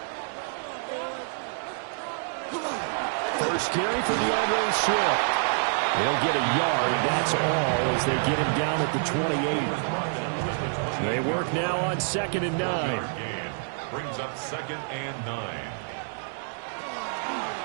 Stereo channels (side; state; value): left; silent; 60 dB below the other